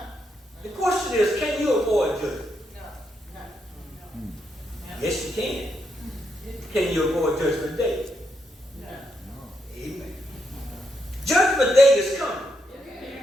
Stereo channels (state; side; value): normal; both; correlation 0.80